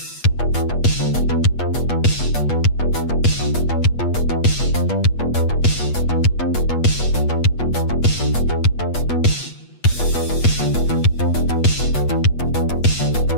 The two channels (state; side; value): late; right; 8.3 ms